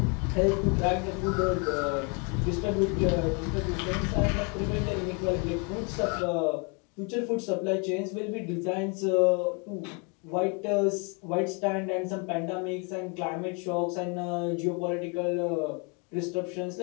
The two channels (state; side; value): quieter; right; 34.5 dB